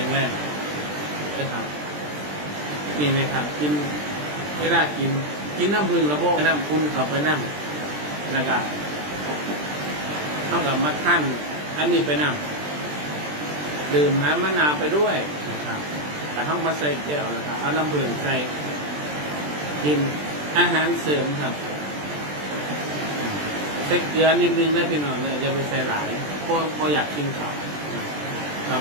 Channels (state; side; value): late; left; 20 ms